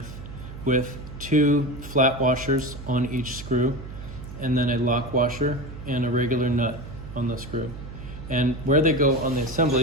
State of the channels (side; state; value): right; noise; hum, 12 dB below the sound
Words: with 2 flat washers on each screw, and then a lock washer and a regular nut on the screw. And where they go on the